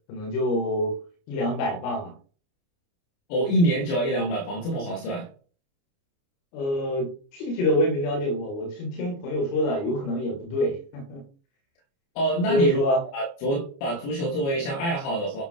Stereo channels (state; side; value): late; right; 29 ms